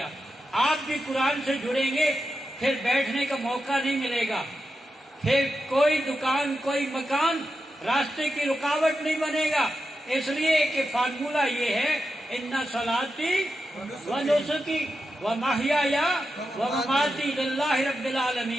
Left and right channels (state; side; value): normal; both; correlation 0.89